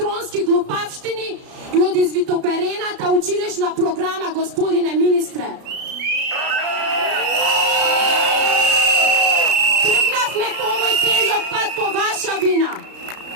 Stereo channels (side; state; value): left; late; 33 ms